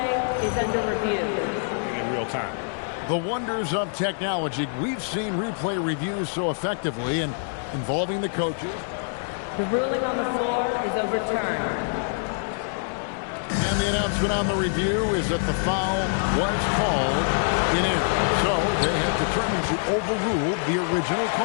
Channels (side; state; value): right; silent; digital silence